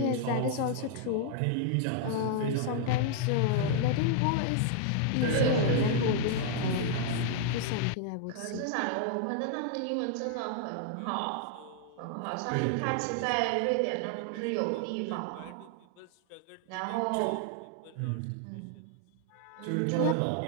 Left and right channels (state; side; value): different; both; correlation 0.00